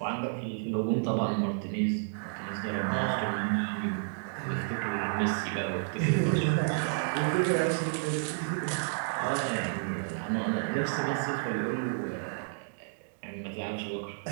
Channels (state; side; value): silent; left; digital silence